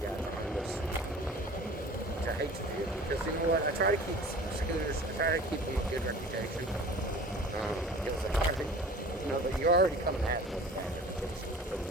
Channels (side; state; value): both; normal; correlation 0.43